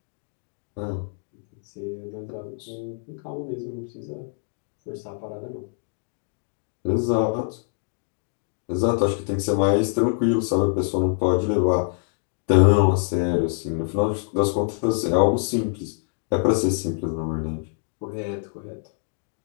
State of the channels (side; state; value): right; silent; digital silence